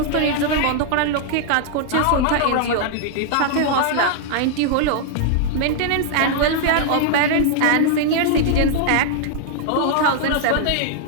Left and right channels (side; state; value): both; different; correlation -0.01